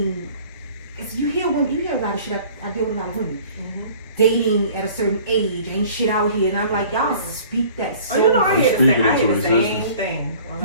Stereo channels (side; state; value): both; inverted; correlation -0.49